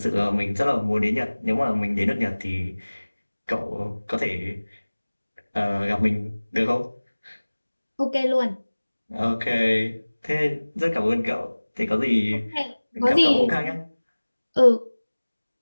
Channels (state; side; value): inverted; both; correlation -1.00